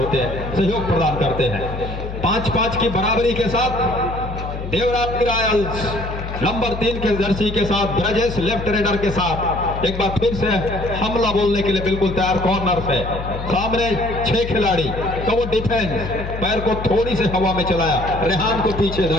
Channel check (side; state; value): left; noise; hum, 7 dB below the sound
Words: हैं, सहयोग प्रदान करते हैं। 5-5 की बराबरी के साथ देवरानी रायल्स नंबर 3 के जर्सी के साथ ब्रजेश लेफ्ट रेडर के साथ एक बार फिर से हमला बोलने के लिए बिल्कुल तैयार। कॉर्नर से सामने 6 खिलाड़ी का वो डिफेंस, पैर को थोड़ी से हवा में चलाया, रेहान को पीछे